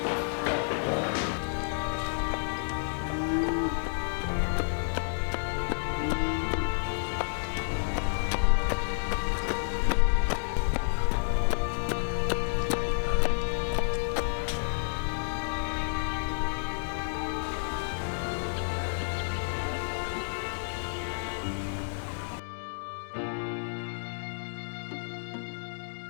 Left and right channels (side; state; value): right; silent; digital silence